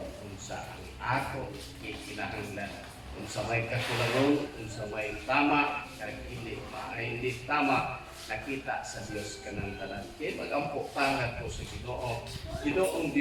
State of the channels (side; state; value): both; identical; correlation 1.00